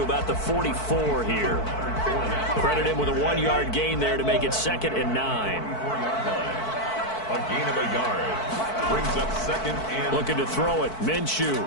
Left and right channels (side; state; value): right; late; 4.5 ms